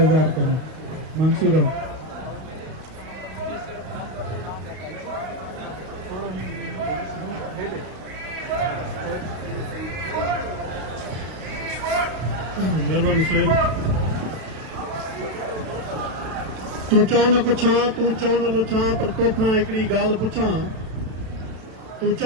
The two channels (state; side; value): late; left; 32 ms